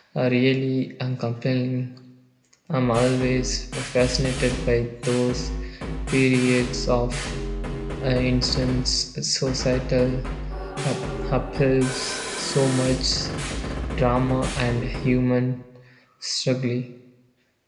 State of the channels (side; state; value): both; identical; correlation 1.00